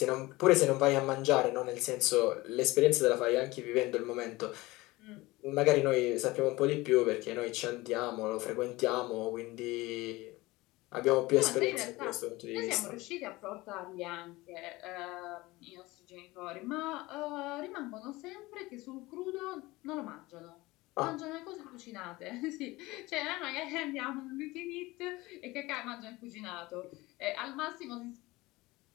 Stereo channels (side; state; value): right; quieter; 20.5 dB